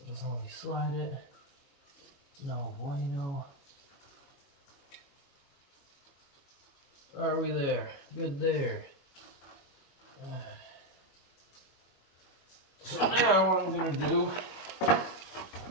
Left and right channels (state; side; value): late; right; 21 ms